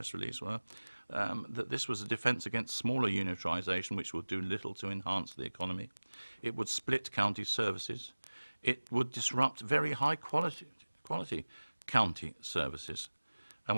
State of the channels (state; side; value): inverted; both; correlation -1.00